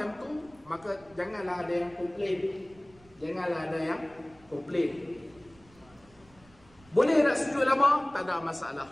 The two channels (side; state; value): right; noise; rumble, 27 dB below the sound